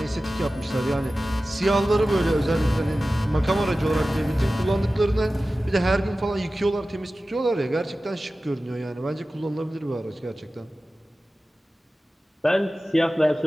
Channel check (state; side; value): normal; both; correlation 0.95